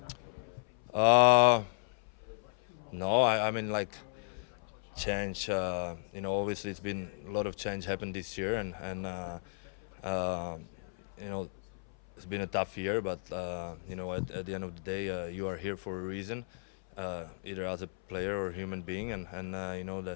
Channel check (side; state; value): right; silent; 55 dB below the other